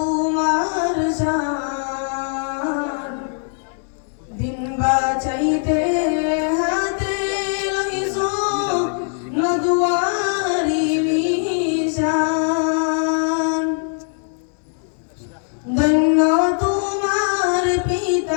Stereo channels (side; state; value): right; silent; 65 dB below the other